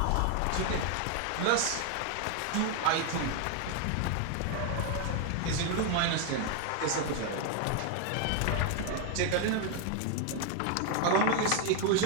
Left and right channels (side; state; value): both; different; correlation 0.01